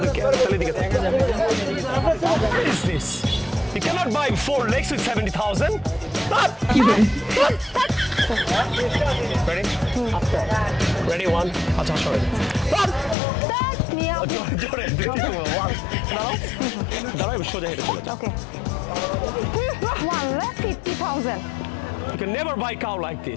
তাহলে এদিকে থাক। What is this? You cannot buy 4 legs with 70,000. Ready? Ready, 1. আচ্ছা, sorry. জোরে। দাঁড়াও, সোজা হেঁটে চলে যাও। Okay. 1,50,000. You can never buy cow like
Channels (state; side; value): drops out; right; at 13.2 s